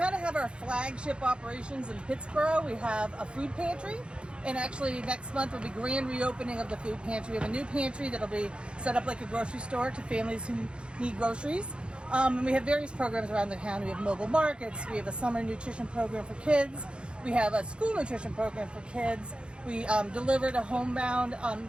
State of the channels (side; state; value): left; late; 0.055 ms